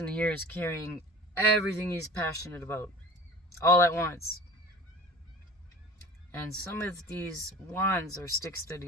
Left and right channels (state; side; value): normal; both; correlation 0.40